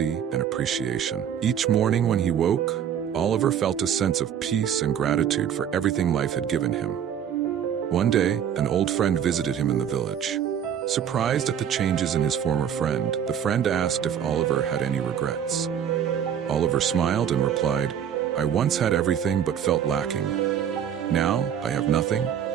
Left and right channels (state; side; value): quieter; left; 8.9 dB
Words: and appreciation. Each morning when he woke, Oliver felt a sense of peace and gratitude for everything life had given him. One day, an old friend visited him in the village. Surprised at the changes in his former friend, the friend asked if Oliver had any regrets. Oliver smiled and replied, "I once had everything but felt lacking. Now, I have nothing,